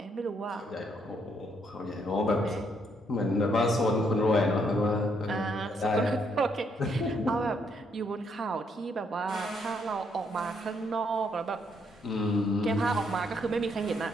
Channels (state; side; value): normal; both; correlation 0.73